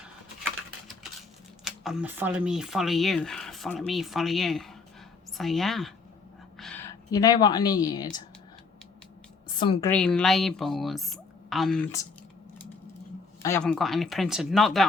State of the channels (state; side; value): quieter; right; 4.5 dB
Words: follow me, follow you. Follow me, follow you. So, yeah. You know what I need? Some green labels. And I haven't got any printed. Not